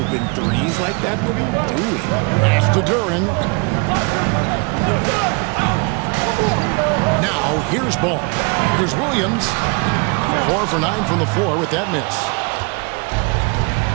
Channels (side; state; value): left; quieter; 31.8 dB